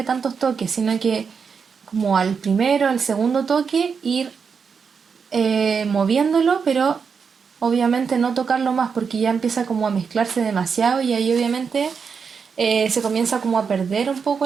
tantos toques, sino que como al primero, al segundo toque, ir moviéndolo, pero obviamente no tocarlo más porque ya empieza como a mezclarse demasiado y ahí obviamente se comienza como a perder un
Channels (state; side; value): quieter; left; 6.0 dB